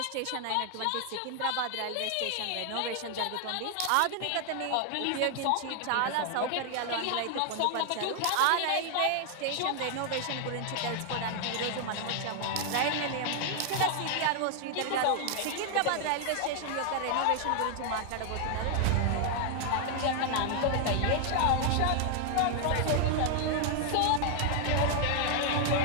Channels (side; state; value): both; different; correlation 0.00